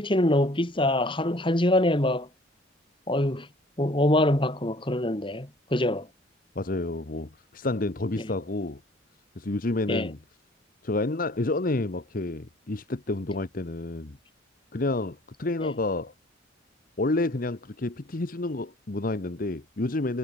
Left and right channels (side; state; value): both; normal; correlation 0.53